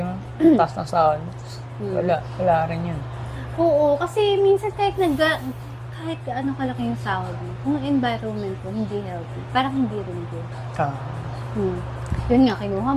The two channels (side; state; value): both; identical; correlation 1.00